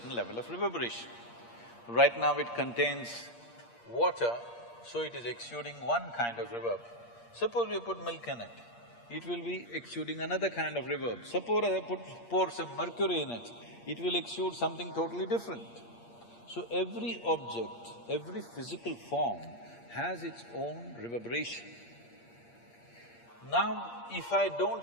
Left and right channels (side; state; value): right; late; 8.5 ms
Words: level of reverberation. Right now it contains water, so it is exuding one kind of reverb. Suppose we put milk in it, it will be exuding another kind of reverb. Suppose I pour some mercury in it, it will exude something totally different. So every object, every physical form has its own reverberation. Now, if I